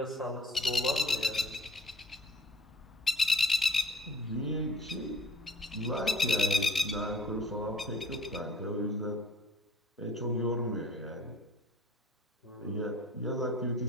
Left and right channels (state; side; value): normal; both; correlation 0.51